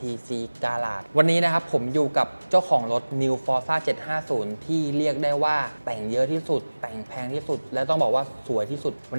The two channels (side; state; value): both; inverted; correlation -1.00